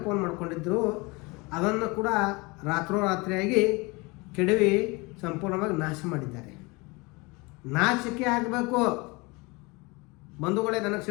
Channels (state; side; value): quieter; right; 26.1 dB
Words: ಮಾಡ್ಕೊಂಡಿದ್ದರು. ಅದನ್ನು ಕೂಡ ರಾತ್ರೋರಾತ್ರಿಯಾಗಿ ಕೆಡವಿ ಸಂಪೂರ್ಣವಾಗಿ ನಾಶ ಮಾಡಿದ್ದಾರೆ. ನಾಚಿಕೆ ಆಗಬೇಕು ಬಂಧುಗಳೇ, ನನಗೆ